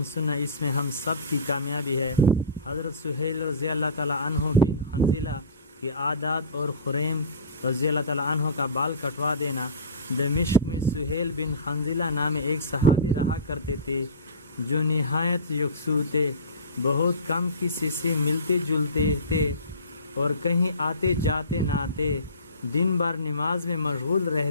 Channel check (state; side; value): inverted; both; correlation -0.34